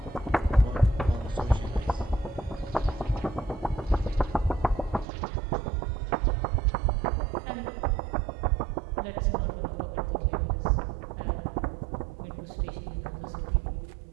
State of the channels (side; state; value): left; drops out; at 5.1 s